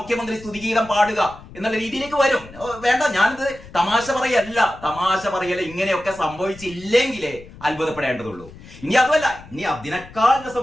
സ്തുതിഗീതം പാടുക എന്നുള്ള രീതിയിലേക്ക് വരും. വേണ്ട, ഞാനിത് തമാശ പറയല്ല. ഇങ്ങനെയൊക്കെ സംഭവിച്ചില്ലെങ്കിലേ അത്ഭുതപ്പെടേണ്ടതുള്ളൂ. ഇനി അതുമല്ല, ഇനി അതിനേക്കാൾ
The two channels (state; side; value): noise; left; rumble, 19 dB below the sound